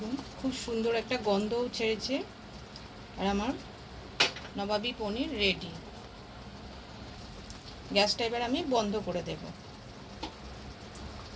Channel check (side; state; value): both; identical; correlation 1.00